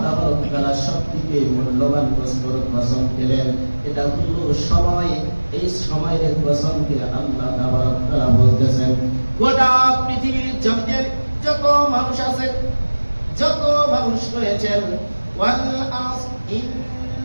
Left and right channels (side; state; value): both; inverted; correlation -1.00